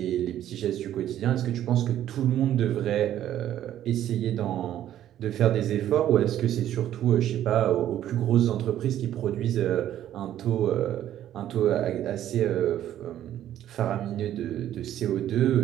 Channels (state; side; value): quieter; left; 11.8 dB